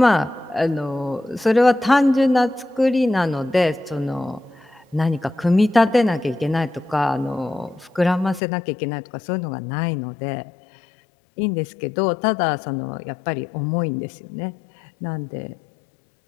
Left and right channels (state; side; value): drops out; right; at 8.4 s